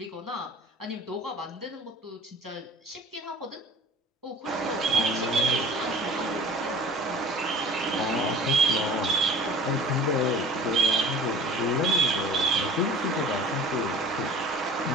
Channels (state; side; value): normal; both; correlation 0.44